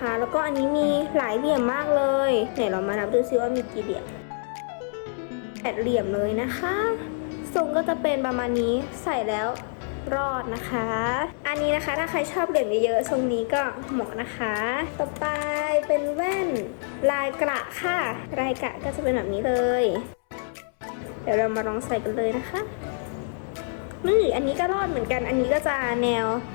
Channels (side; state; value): right; silent; 61 dB below the other